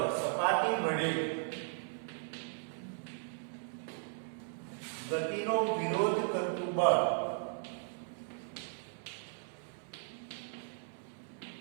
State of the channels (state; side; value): silent; left; 53 dB below the other